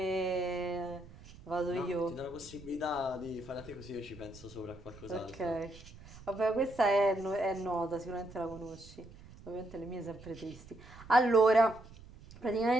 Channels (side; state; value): right; noise; rumble, 19 dB below the sound